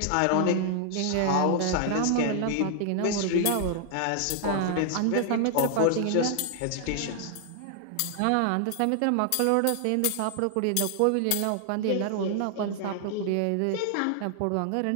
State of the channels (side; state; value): both; different; correlation 0.00